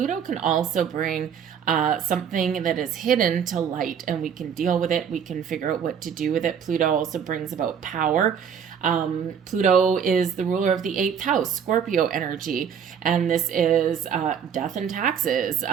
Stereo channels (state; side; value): quieter; left; 7.7 dB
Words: can also bring something that is hidden to light, and we can deal with it. We can figure out what to do with it. Pluto also brings about power. Pluto is the ruler of the 8th house, Scorpio energy, and this is death and taxes,